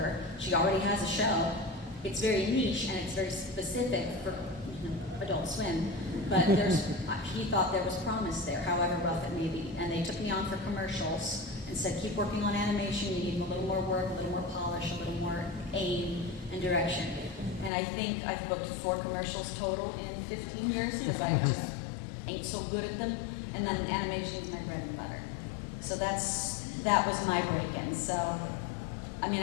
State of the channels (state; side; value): drops out; right; at 17.7 s